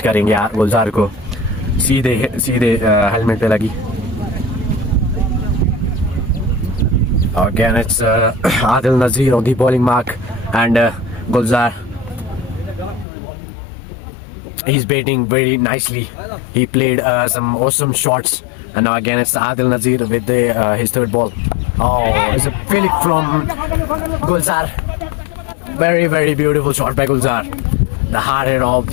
करेंगे गुलजार को, सीधे सीधे हेलमेट पे लगी। Again, it's Adil Nazir on the bowling mark, and Gulzar, he's batting very nicely. He played some awesome shots, and now again it's Adil Nazir with his third ball. Oh, it's a flick from Gulzar. Very, very beautiful shot by Gulzar. The hard hit of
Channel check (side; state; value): right; drops out; at 13.1 s